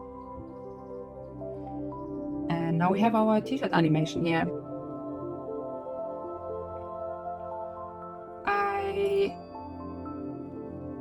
And now we have our t-shirt animation here.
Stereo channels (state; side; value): identical; both; correlation 1.00